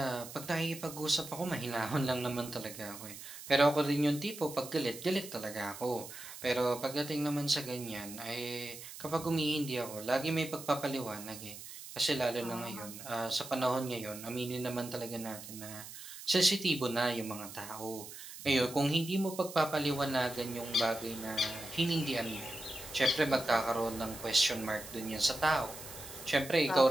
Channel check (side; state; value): right; noise; hiss, 13 dB below the sound